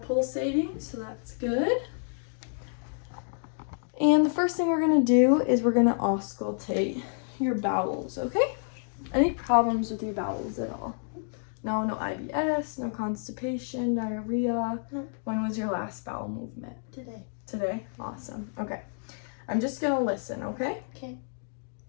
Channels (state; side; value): silent; right; digital silence